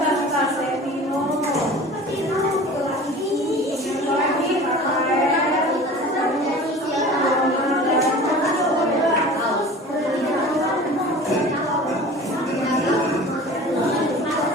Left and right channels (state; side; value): normal; both; correlation 0.40